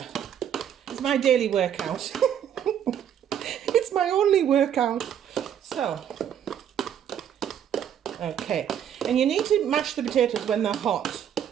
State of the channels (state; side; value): quieter; left; 9.4 dB